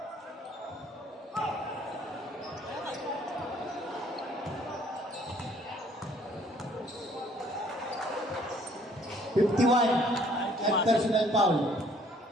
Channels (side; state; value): both; normal; correlation 0.60